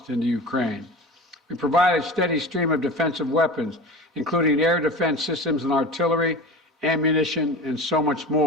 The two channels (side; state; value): both; normal; correlation 0.33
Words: into Ukraine. We provided a steady stream of defensive weapons, including air defense systems and artillery, ammunition, and so much